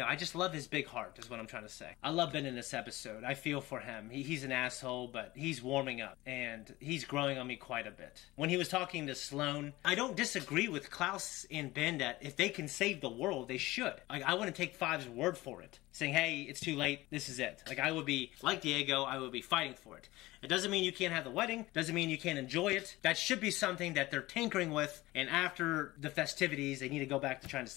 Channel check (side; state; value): right; quieter; 19.0 dB